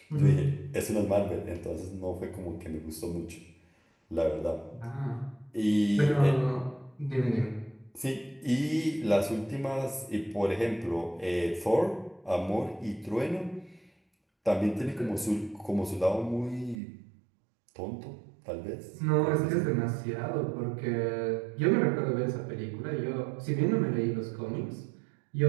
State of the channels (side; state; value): left; drops out; at 16.8 s